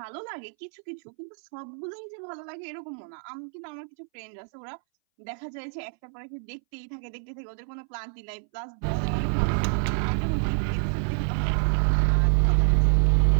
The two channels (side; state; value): left; silent; 60 dB below the other